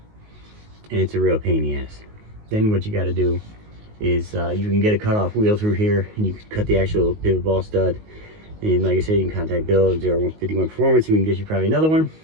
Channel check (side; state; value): left; late; 19 ms